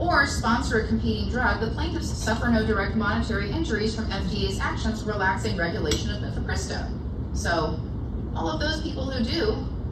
sponsor a competing drug, the plaintiffs suffer no direct monetary injuries from FDA's actions relaxing regulation of mifepristone. So, all of those people who do,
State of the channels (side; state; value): both; identical; correlation 1.00